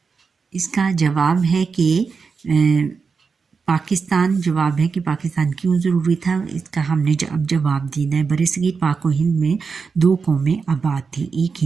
اس کا جواب ہے کہ جواب ہے کہ پاکستان کیوں ضروری تھا، اس کا ہم نے اب جواب دینا ہے۔ برصغیر پاک و ہند میں 2 قومیں آباد تھیں، ایک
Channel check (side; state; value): left; quieter; 5.2 dB